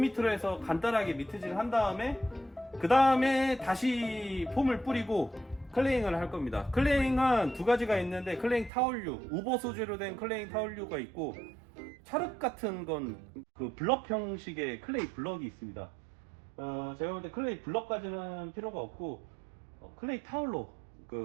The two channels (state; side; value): drops out; left; at 8.7 s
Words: 해서 간단하게 미트질 한 다음에, 그 다음에 다시 폼을 뿌리고 클레잉을 할 겁니다. 클레잉은 두 가지가 있는데, 클레잉 타올류, 우버 소재로 된 클레잉 타올류가 있고, 찰흙 같은 건 그 블럭 형식의 클레이 블럭이 있습니다. 제가 볼 때 클레이 블럭까지는 필요가 없고 클레이 타올로